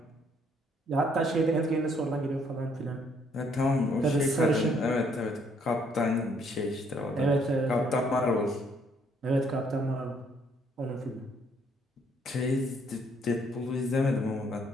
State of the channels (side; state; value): both; normal; correlation 0.67